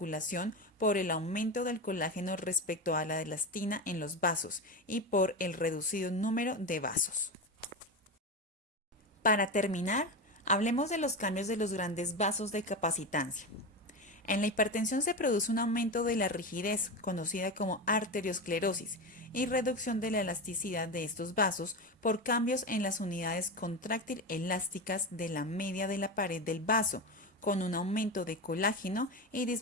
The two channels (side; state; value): both; normal; correlation 0.19